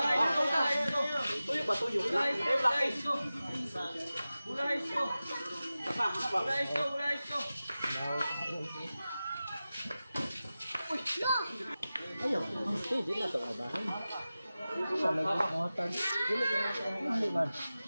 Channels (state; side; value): inverted; both; correlation -0.95